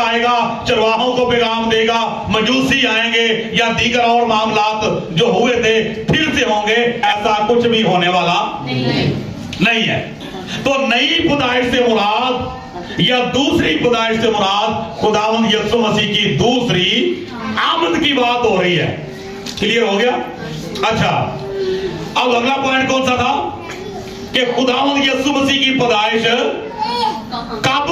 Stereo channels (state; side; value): identical; both; correlation 1.00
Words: चरवाहों को पैगाम देगा, मजूसी आएंगे या दीगर और मामलात जो हुए थे फिर से होंगे। ऐसा कुछ भी होने वाला नहीं है। तो नई पैदाइश से मुराद या दूसरी पैदाइश से मुराद खुदावंद यीशु मसीह की दूसरी आमद की बात हो रही है। क्लियर हो गया? अच्छा, अब अगला पॉइंट कौन सा था कि खुदावंद यीशु मसीह की पैदाइश कब